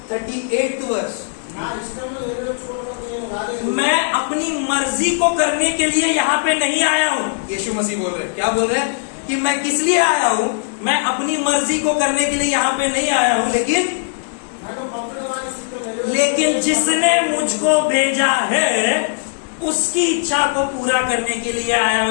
38 verse. मैं अपनी मर्जी को करने के लिए यहाँ पे नहीं आया हूँ। यीशु मसीह बोल रहे हैं, क्या बोल रहे हैं? कि मैं किस लिए आया हूँ? मैं अपनी मर्जी को करने के लिए यहाँ पे नहीं आया हूँ, लेकिन जिसने मुझको भेजा है उसकी इच्छा को पूरा करने के लिए आया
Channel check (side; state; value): right; silent; digital silence